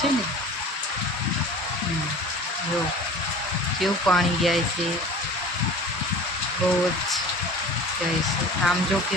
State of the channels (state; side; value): normal; both; correlation 0.41